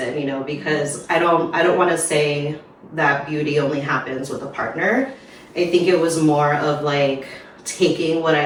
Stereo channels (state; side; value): identical; both; correlation 1.00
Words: you know, because I don't want to say that beauty only happens with a partner. I think it was more of like taking what